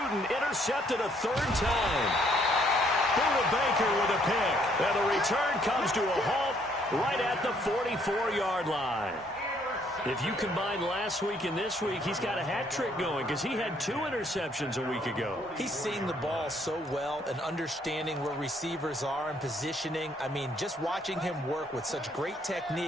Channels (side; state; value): both; normal; correlation 0.67